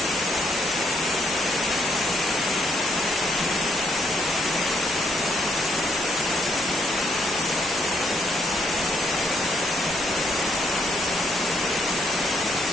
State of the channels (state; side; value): normal; both; correlation 0.72